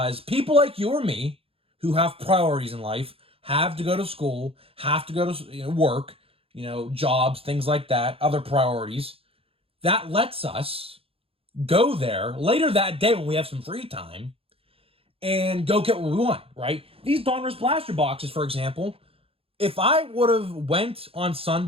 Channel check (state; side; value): late; left; 0.27 ms